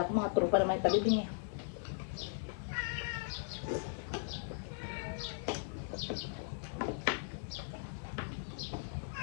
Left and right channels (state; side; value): silent; right; 52 dB below the other